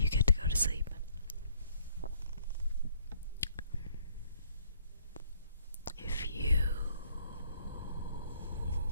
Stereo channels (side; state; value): both; inverted; correlation -0.66